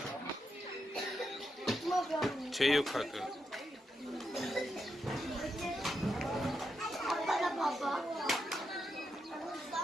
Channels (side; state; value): both; normal; correlation 0.84